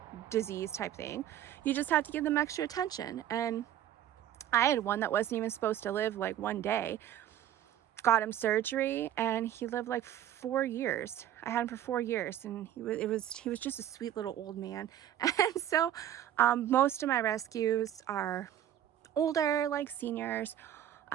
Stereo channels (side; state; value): left; quieter; 11.4 dB